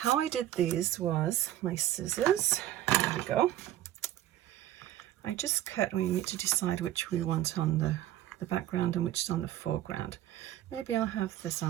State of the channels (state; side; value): quieter; left; 13.2 dB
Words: I did these was my scissors. There we go. I just cut. We need to decide which we want on the background and which is on the foreground. Maybe I'll have this